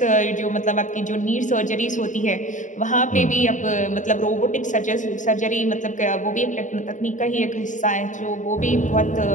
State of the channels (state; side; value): late; right; 0.36 ms